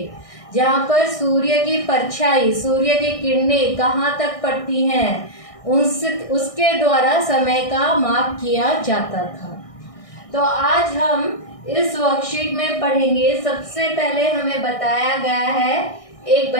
जहाँ पर सूर्य की परछाई, सूर्य की किरणें कहाँ तक पड़ती हैं, उसके द्वारा समय का माप किया जाता था। तो आज हम इस वर्कशीट में पढ़ेंगे। सबसे पहले हमें बताया गया है एक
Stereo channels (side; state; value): right; late; 1.6 ms